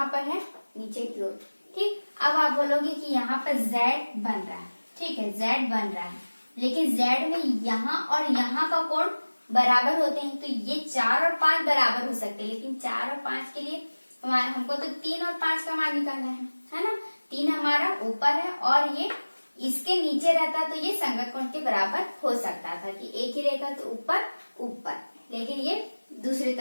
पर है नीचे की ओर। ठीक, अब आप बोलोगे कि यहाँ पर Z बन रहा है। ठीक है, Z बन रहा है, लेकिन Z में यहाँ और यहाँ का कोण बराबर होते हैं। तो ये 4 और 5 बराबर हो सकते हैं, लेकिन 4 और 5 के लिए हमको तो 3 और 5 का मान निकालना है ना। 3 हमारा ऊपर है और ये इसके नीचे रहता तो ये संगत कोण के बराबर हो सकता था कि एक ही रेखा तो ऊपर, लेकिन ये दूसरी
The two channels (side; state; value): both; inverted; correlation -1.00